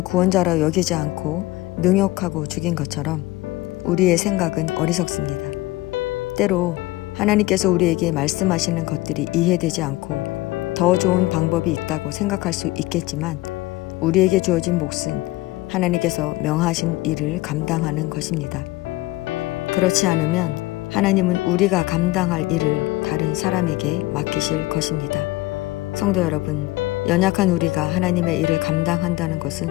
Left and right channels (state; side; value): quieter; right; 19.4 dB